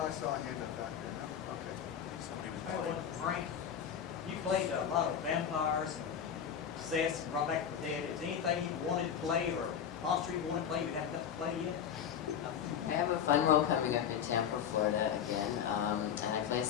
I saw a hand up back there. No? Okay. somebody was Hey, well, Frank, you played a lot of vampires and possessed and brought back from the dead. Is there anything you wanted to play or monster you wanted to play you haven't got to play yet? I have a fun role coming up in Tampa, Florida again, and I play a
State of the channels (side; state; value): right; quieter; 8.4 dB